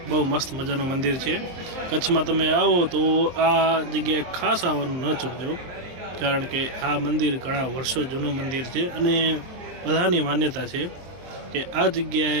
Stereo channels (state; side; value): late; left; 23 ms